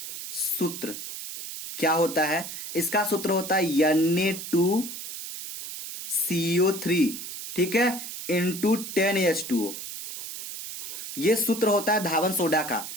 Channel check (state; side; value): noise; right; hiss, 9 dB below the sound